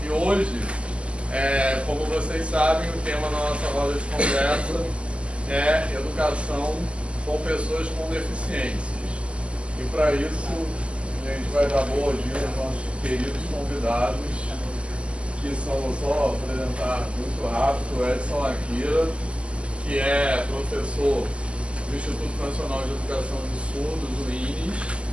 E hoje, como vocês sabem, o tema da nossa roda de conversa é educação com pessoas com deficiências. E para isso, a gente vai dar boa-vinda aos nossos queridos convidados, que são, vou só apresentar muito rápido, o Edson Akira, que é professor do Instituto Nacional de Educação de Surdos, o INES,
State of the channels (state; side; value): late; left; 0.055 ms